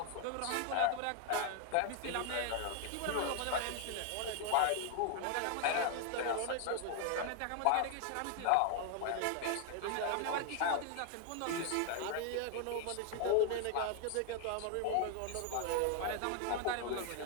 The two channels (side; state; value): both; different; correlation 0.00